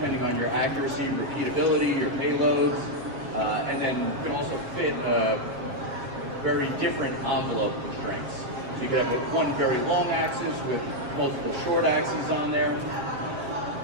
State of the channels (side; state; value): left; late; 7.5 ms